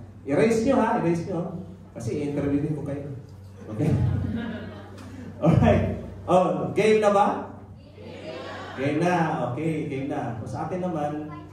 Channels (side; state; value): both; identical; correlation 1.00